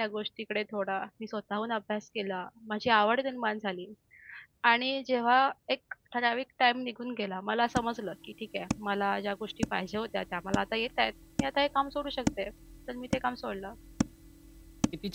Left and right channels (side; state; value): both; identical; correlation 1.00